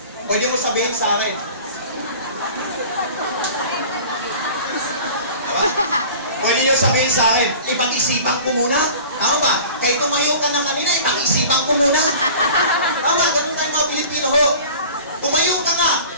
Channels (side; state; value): both; inverted; correlation -0.42